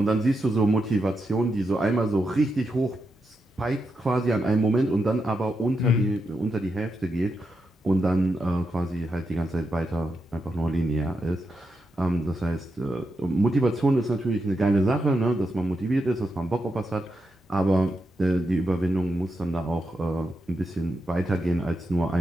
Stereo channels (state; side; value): normal; both; correlation 0.85